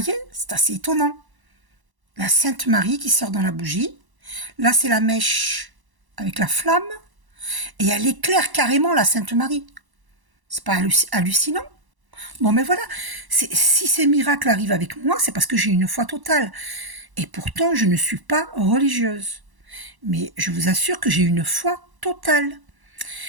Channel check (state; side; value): late; left; 1.0 ms